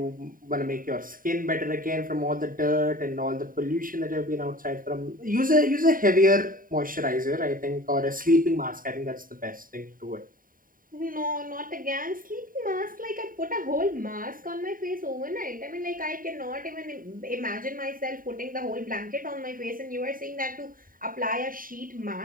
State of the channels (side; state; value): left; late; 0.41 ms